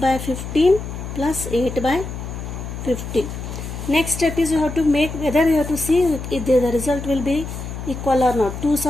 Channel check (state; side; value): noise; left; hum, 8 dB below the sound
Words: 15 plus 8 by 15. Next step is you have to make, whether you have to see if the result will be equal or not. 2